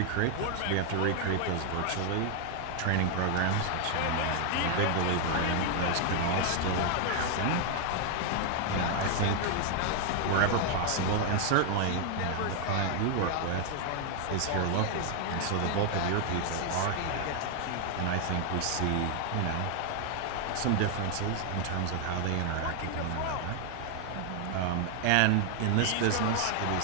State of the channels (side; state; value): both; different; correlation 0.00